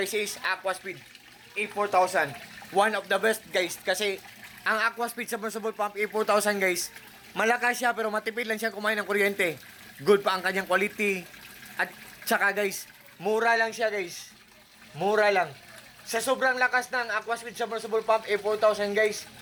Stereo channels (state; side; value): identical; both; correlation 1.00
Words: is Aquaspeed A4000. One of the best guys kasi ang Aquaspeed submersible pump A4000 guys, malakas siya pero matipid lang siya kumain ng kuryente. Good pa ang kanyang quality. At saka guys, mura lang siya guys. Mura lang. Sa sobrang lakas ng Aquaspeed submersible pump A4000 guys,